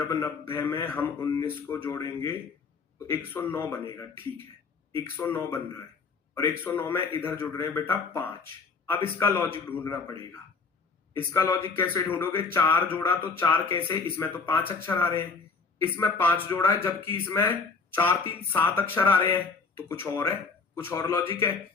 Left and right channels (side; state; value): right; quieter; 4.5 dB